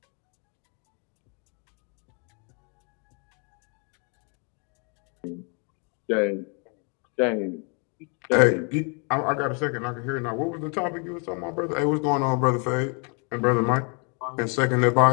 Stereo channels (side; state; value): right; quieter; 36.8 dB